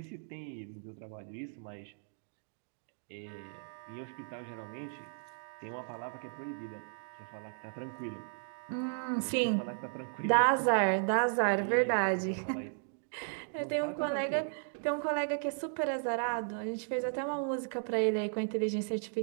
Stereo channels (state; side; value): silent; left; digital silence